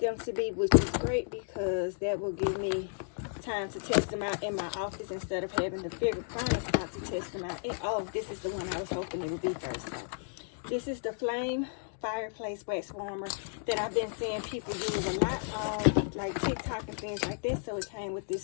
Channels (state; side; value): silent; right; digital silence